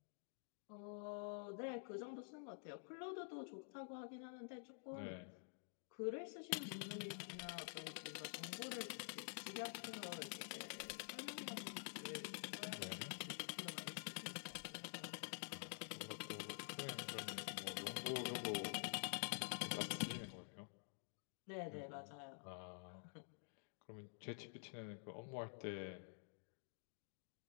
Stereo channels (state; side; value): silent; right; digital silence